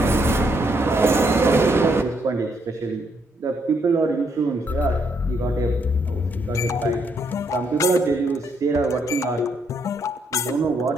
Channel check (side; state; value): both; normal; correlation 0.74